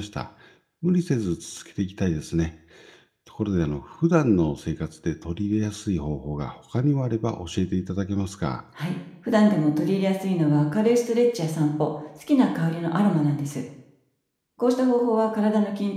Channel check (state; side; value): identical; both; correlation 1.00